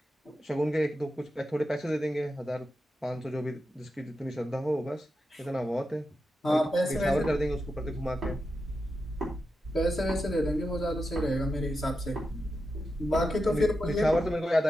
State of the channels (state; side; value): normal; both; correlation 0.89